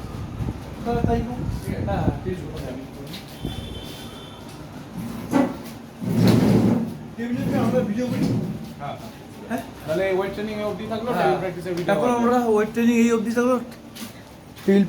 তাহলে তাই কর। হ্যাঁ, ঠিক আছে। আমি করি। টেবিলে আমরা ভিডিও করি। হ্যাঁ হ্যাঁ, তাহলে ওয়েট ট্রেনিং এ অবধি থাকলো হ্যাঁ। ট্রেনিং প্র্যাকটিসের ভিডিও এখন আমরা ওয়েট ট্রেনিং এই অবধি থাকলো, টেবিল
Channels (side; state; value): both; identical; correlation 1.00